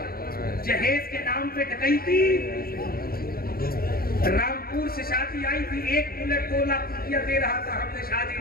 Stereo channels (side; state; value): right; late; 0.43 ms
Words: جہیز کے نام پہ ڈکیتی. رامپور سے شادی آئی تھی, 1 بلٹ 2 لاکھ روپیہ دے رہا تھا, ہم نے